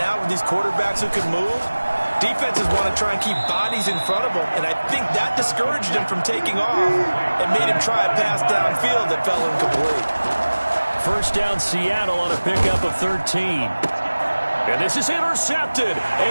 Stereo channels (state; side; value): inverted; both; correlation -1.00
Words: with these quarterbacks who can move, defenses want to try and keep bodies in front of them, and I think that discouraged him from taking off and made him try a pass downfield that fell incomplete. First down Seattle on a pickup of 13. And this is intercepted,